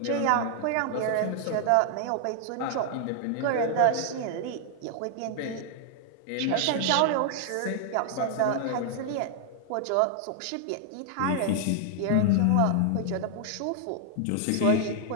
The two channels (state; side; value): different; both; correlation 0.00